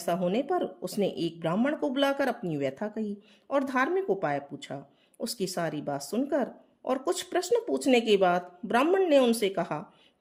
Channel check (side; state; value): both; identical; correlation 1.00